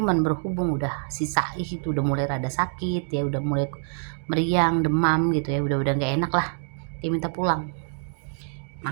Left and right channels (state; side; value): silent; left; digital silence